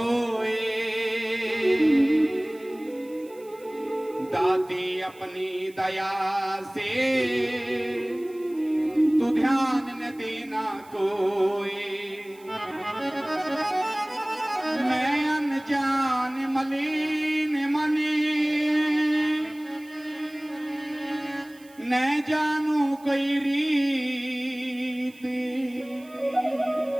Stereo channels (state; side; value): noise; right; hiss, 26 dB below the sound